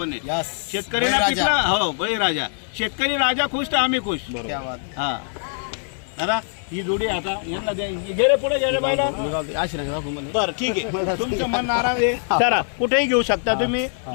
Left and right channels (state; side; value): silent; right; 59 dB below the other